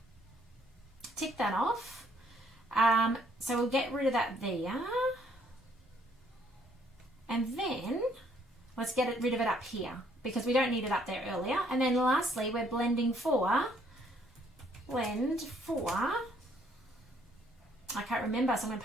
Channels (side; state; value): both; normal; correlation 0.66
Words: Tick that off. So we'll get rid of that there. And then let's get rid of it up here because we don't need it up there earlier. And then lastly, we're blend for, I can't remember, so I'm going